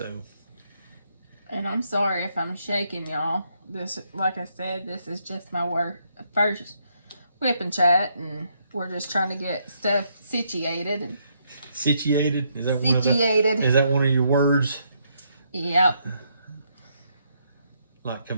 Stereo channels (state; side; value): inverted; both; correlation -0.75